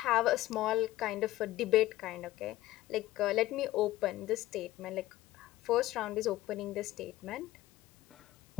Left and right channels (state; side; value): quieter; right; 16.2 dB